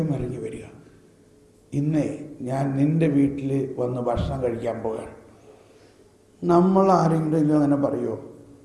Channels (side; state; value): both; identical; correlation 1.00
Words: ഇറങ്ങി വരിക, ഇന്നേ ഞാൻ നിന്റെ വീട്ടിൽ വന്ന് ഭക്ഷണം കഴിക്കാൻ പോവുകയാണ്. നമ്മൾ ആരെങ്കിലും അങ്ങനെ പറയുമോ,